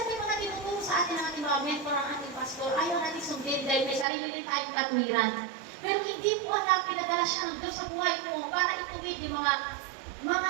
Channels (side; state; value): left; drops out; at 4.0 s